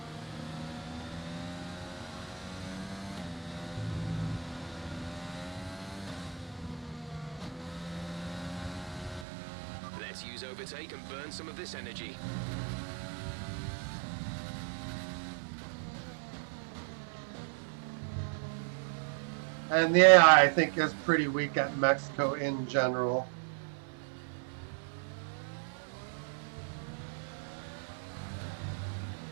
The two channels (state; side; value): drops out; left; at 9.2 s